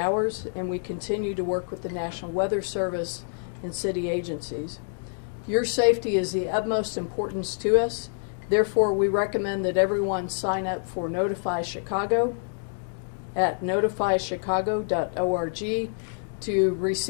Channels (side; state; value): right; silent; digital silence